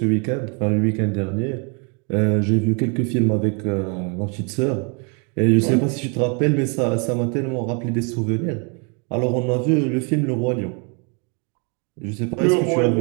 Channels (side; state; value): left; quieter; 35.5 dB